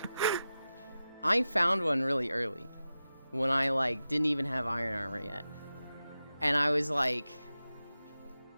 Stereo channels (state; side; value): inverted; both; correlation -0.93